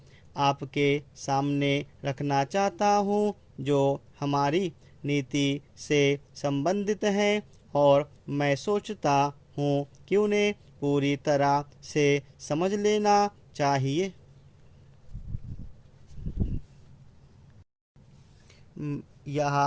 आपके सामने रखना चाहता हूँ जो हमारी नीति से संबंधित हैं, और मैं सोचता हूँ कि उन्हें पूरी तरह से समझ लेना चाहिए। यह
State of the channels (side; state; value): both; identical; correlation 1.00